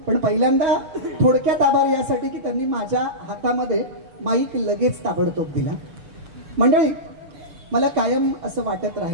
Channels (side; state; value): left; late; 6.8 ms